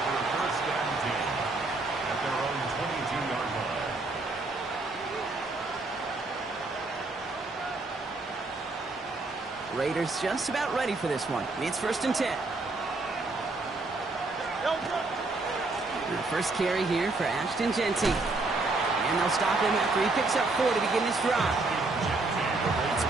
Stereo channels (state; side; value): quieter; left; 3.3 dB